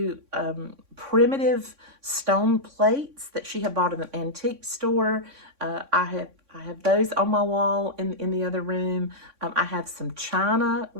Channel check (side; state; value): left; late; 3.6 ms